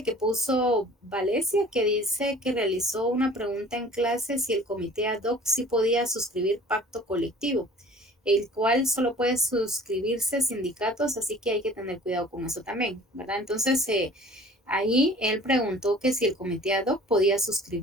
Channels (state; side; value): normal; both; correlation 0.48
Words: que puso Valencia, que dice que realizó una pregunta en clase si el comité ad hoc sí podía suscribir pacto colectivo, el cual solo puede suscribirse sindicatos, así que hay que tener cuidado con eso también, ¿verdad? Entonces, ahí él preguntó que si el comité ad hoc podía